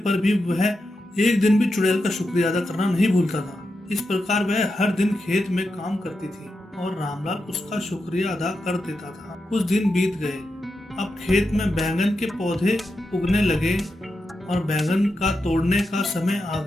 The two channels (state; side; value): normal; both; correlation 0.87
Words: भी वह एक दिन भी चुड़ैल का शुक्रिया अदा करना नहीं भूलता था। इस प्रकार वह हर दिन खेत में काम करती थी और रामलाल उसका शुक्रिया अदा कर देता था। कुछ दिन बीत गए। अब खेत में बैंगन के पौधे उगने लगे और बैंगन का तोड़ने का समय आ